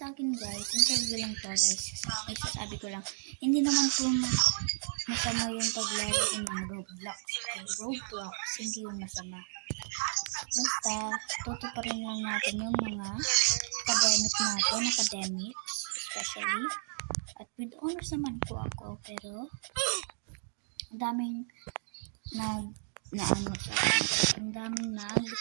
akin guys, interview lang to guys. Ay, sasabi ko lang, hindi naman po masama yung paglaro ng Roblox. Hindi yung masama. Basta, tutuparin lang natin yung mga academics, especially. At with honors naman po ako, pero ang daming sa akin. Ang daming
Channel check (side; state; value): left; silent; digital silence